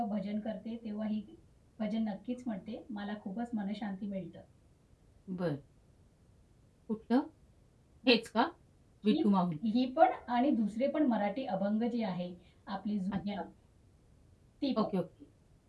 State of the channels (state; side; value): identical; both; correlation 1.00